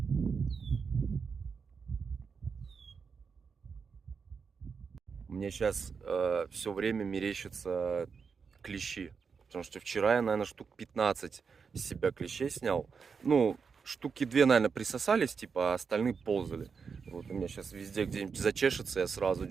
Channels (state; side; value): quieter; left; 5.7 dB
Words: Мне сейчас все время мерещатся клещи. Потому что вчера я, наверное, штук 15 из себя клещей снял. Ну, штуки 2, наверное, присосались, типа, а остальные ползали. Вот у меня сейчас везде где-нибудь зачешется, я сразу